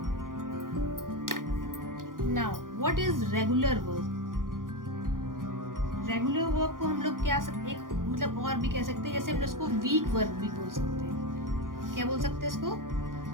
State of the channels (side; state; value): left; late; 0.90 ms